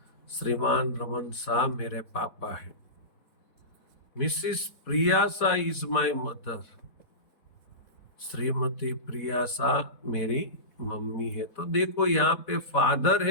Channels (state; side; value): late; right; 4.2 ms